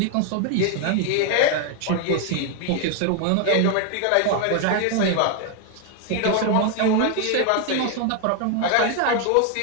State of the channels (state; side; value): different; both; correlation 0.01